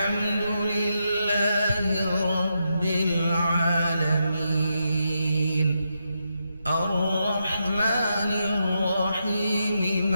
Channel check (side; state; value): both; inverted; correlation -0.83